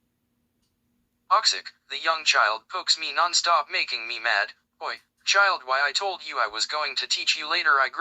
me non-stop, making me mad. Oi, child, why I told you I was going to teach you later, I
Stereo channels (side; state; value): both; identical; correlation 1.00